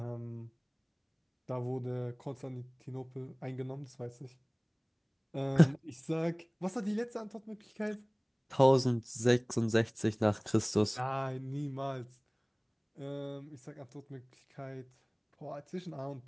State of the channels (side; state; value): both; identical; correlation 1.00